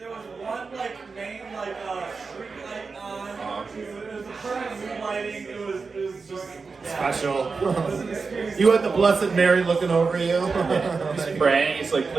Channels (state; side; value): quieter; left; 4.6 dB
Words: was one like main like street light on. It was a perfect mood lighting. It was just Special. You had the Blessed Mary looking over you. He's praying. He's like,